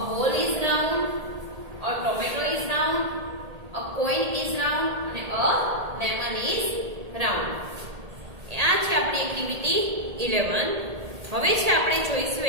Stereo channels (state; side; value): late; left; 1.8 ms